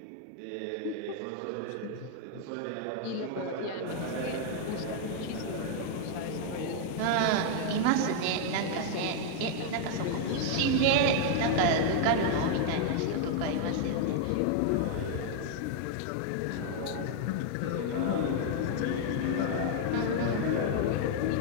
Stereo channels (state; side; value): different; both; correlation 0.00